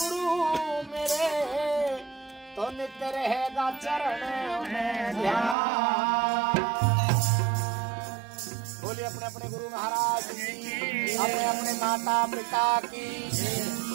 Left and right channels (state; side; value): drops out; left; at 5.6 s